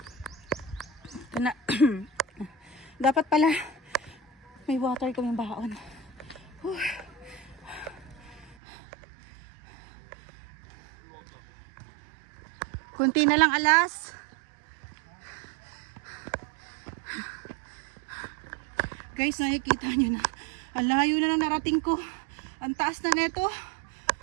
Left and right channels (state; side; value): drops out; left; at 8.6 s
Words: Ito na. Dapat pala may water kaming baon. Kunti na lang alas. Guys, nakikita nyo na. Ang layo na lang narating ko. Ang taas na neto.